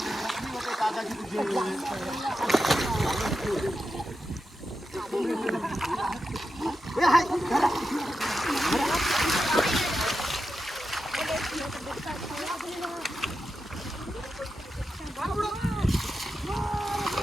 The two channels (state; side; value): normal; both; correlation 0.89